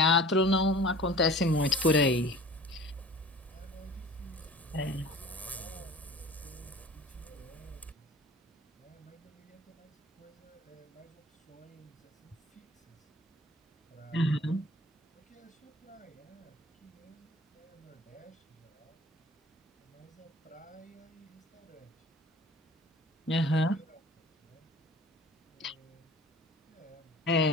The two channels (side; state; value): both; normal; correlation 0.43